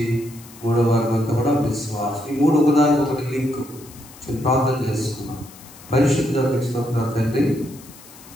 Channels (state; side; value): noise; left; hiss, 21 dB below the sound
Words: మూడవ వారం అంతా కూడా విశ్వాసం. ఈ మూడు ఒకదానికి ఒకటి లింక్. ప్రార్థన చేసుకున్నాం. పరిశుద్ధ స్తోత్రం తండ్రి.